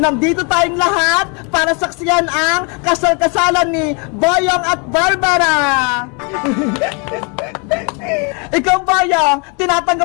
Nandito tayong lahat para saksiyan ang kasal-kasalan ni Boyong at Barbara! Ikaw, Boyong,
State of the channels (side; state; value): right; quieter; 34.0 dB